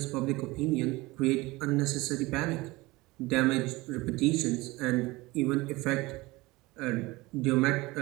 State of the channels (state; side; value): quieter; left; 21.5 dB